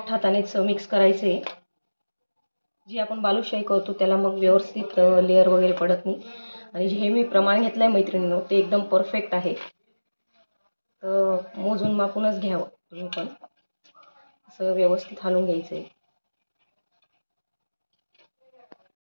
हातानेच मिक्स करायचं आहे. जी आपण बालुशाही करतो त्याला मग व्यवस्थित लेअर वगैरे पडत नाही. आणि जे मी प्रमाण घेतलं आहे मैत्रिणींनो ते एकदम परफेक्ट आहे. तर मोजून मापूनच घ्यावं तुम्ही पण. असं व्यवस्थित हलवून घ्यायचं आहे.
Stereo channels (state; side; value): inverted; both; correlation -1.00